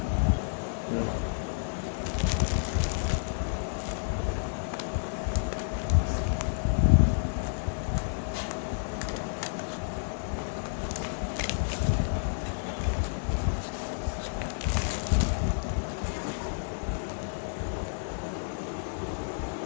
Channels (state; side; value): silent; right; digital silence